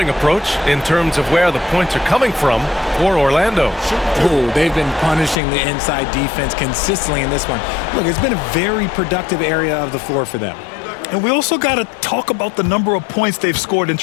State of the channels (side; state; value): right; drops out; at 5.4 s